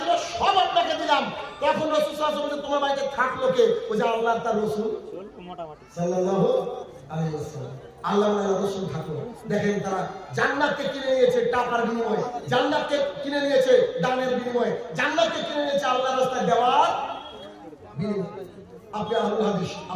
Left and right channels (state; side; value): identical; both; correlation 1.00